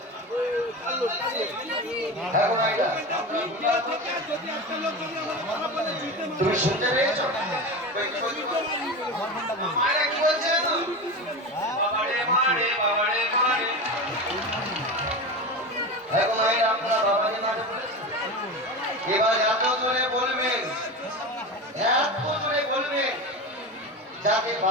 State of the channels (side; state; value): both; normal; correlation 0.25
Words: তুমি শুনতে পেয়েছো মারা কি বলছে তো বাবারে মারে বাবারে মারে এখন এই আপনার বাবাকে মারে এবার এত জোরে বলবেন যাতে